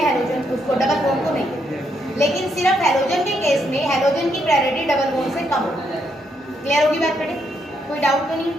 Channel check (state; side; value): normal; both; correlation 0.77